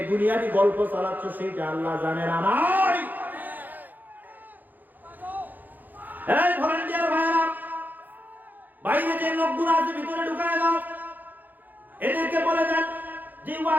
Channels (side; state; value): left; late; 0.085 ms